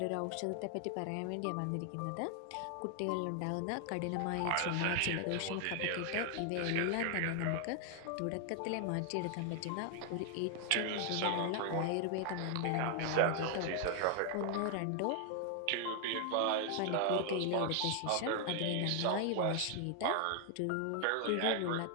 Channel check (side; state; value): both; different; correlation 0.00